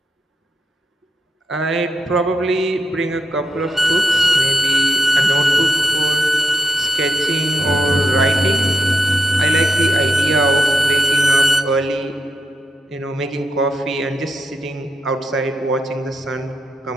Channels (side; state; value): both; normal; correlation 0.85